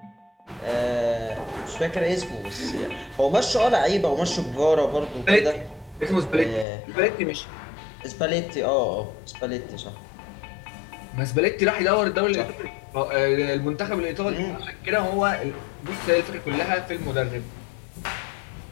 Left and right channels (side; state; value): right; drops out; at 6.7 s